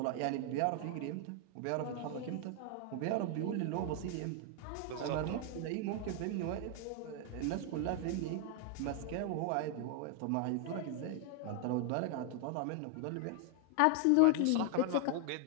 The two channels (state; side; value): different; both; correlation 0.00